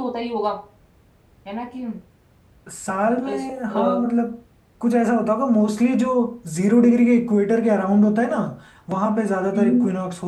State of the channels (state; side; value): identical; both; correlation 1.00